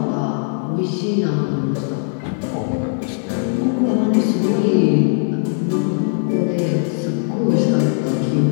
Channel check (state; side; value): silent; right; digital silence